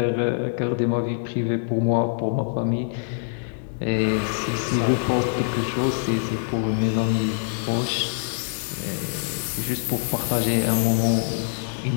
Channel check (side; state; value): right; silent; digital silence